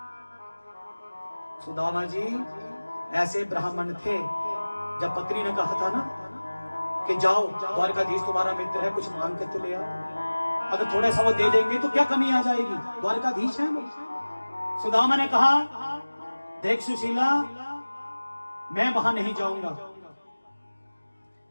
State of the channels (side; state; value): both; inverted; correlation -1.00